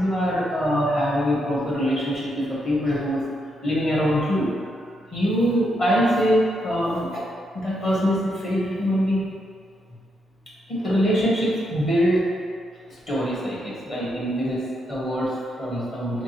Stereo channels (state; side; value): normal; both; correlation 0.79